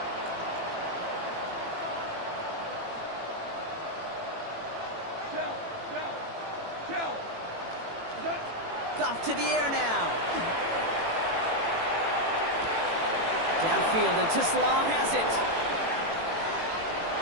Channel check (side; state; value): left; late; 18 ms